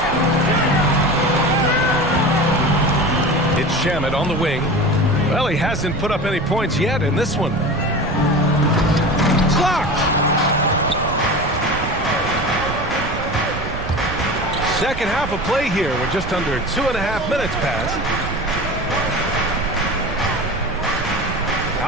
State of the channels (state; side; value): noise; right; rumble, 8 dB below the sound